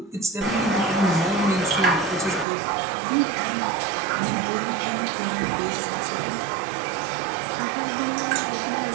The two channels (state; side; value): drops out; left; at 2.5 s